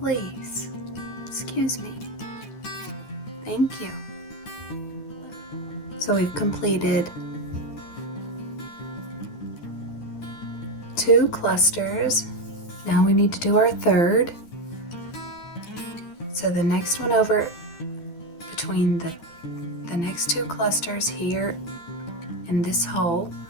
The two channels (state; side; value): late; right; 12 ms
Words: Excuse me. Thank you. So we've completed 2 clusters. Now we need to do our third. So the next one over between the the next two clusters here in this hole,